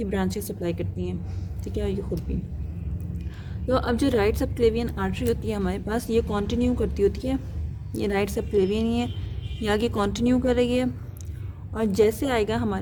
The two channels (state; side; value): identical; both; correlation 1.00